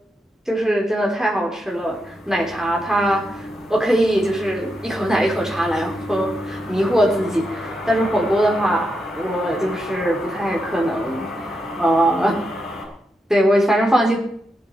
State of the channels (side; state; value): both; normal; correlation 0.84